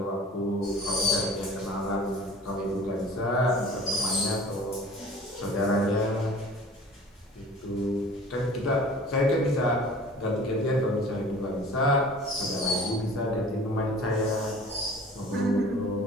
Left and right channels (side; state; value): both; normal; correlation 0.45